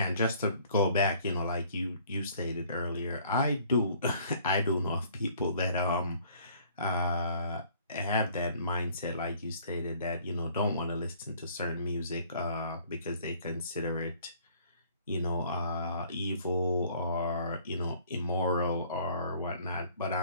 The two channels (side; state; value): both; inverted; correlation -0.57